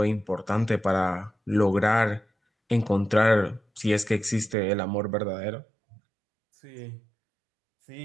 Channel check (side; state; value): left; drops out; at 4.5 s